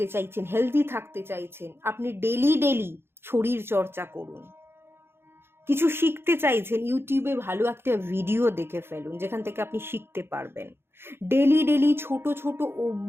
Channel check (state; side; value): late; left; 0.11 ms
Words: চাইছেন, হেলদি থাকতে চাইছেন, আপনি ডেলি ডেলি শরীর চর্চা করুন। কিছু শিখতে চাইছেন, ইউটিউবে ভালো একটা ভিডিও দেখে ফেলুন যেখান থেকে আপনি শিখতে পারবেন। ডেলি ডেলি ছোট ছোট